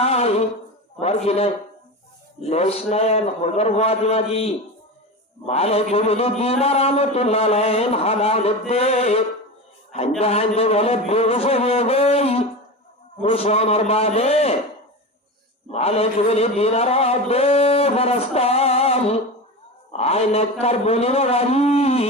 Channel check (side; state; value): both; normal; correlation 0.25